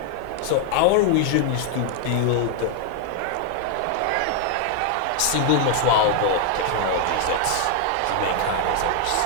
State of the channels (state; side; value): different; both; correlation 0.00